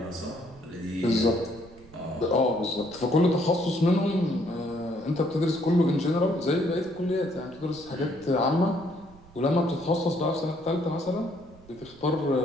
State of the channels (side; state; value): right; noise; rumble, 23 dB below the sound